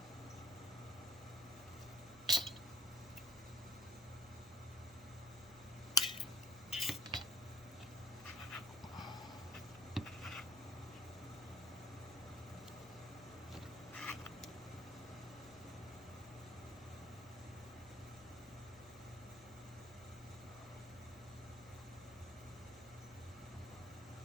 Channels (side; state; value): both; normal; correlation 0.46